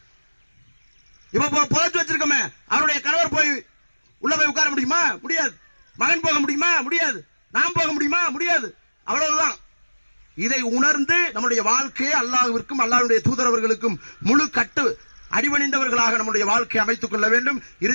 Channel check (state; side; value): inverted; both; correlation -1.00